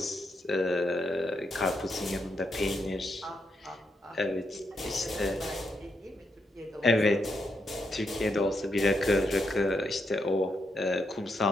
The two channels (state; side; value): normal; both; correlation 0.81